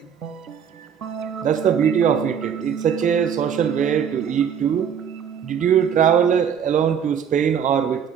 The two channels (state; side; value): quieter; left; 7.9 dB